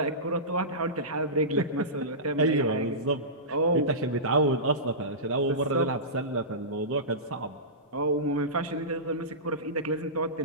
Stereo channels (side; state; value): both; normal; correlation -0.20